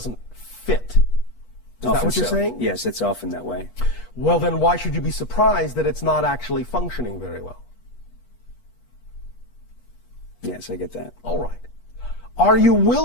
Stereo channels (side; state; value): right; late; 8.3 ms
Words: fit. Is that what you're saying? Yes, it's often that way. Well, then why should you be surprised that it's not actually functioning very well? Yes, I get that. All right. Are you